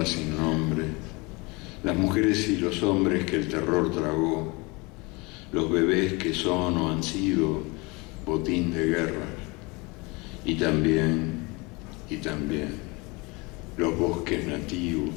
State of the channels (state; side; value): quieter; right; 26.5 dB